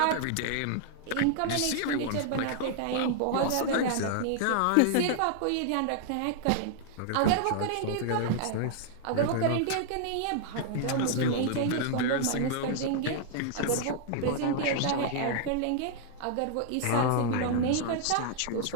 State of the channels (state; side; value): different; both; correlation -0.01